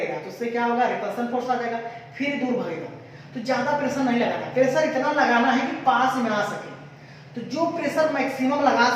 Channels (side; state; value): both; identical; correlation 1.00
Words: तो उससे क्या होगा, रिपल्सन फोर्स आ जाएगा, फिर दूर भागेगा। तो ज्यादा प्रेशर नहीं लगाना, प्रेशर इतना लगाना है कि पास में आ सके। तो जो प्रेशर मैक्सिमम लगा